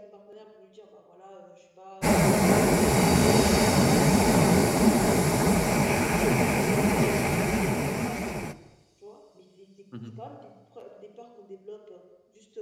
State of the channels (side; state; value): both; identical; correlation 1.00